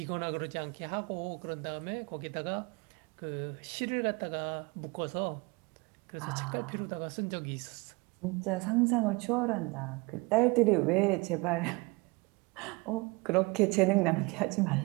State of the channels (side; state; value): left; quieter; 26.6 dB